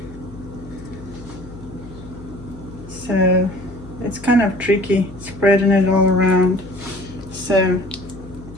So it's kind of tricky spreading it all around. So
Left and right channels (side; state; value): left; noise; hum, 17 dB below the sound